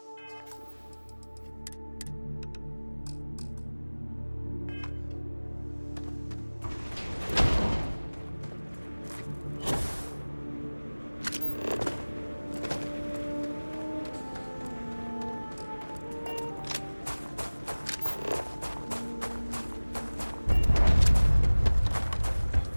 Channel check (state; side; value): inverted; both; correlation -1.00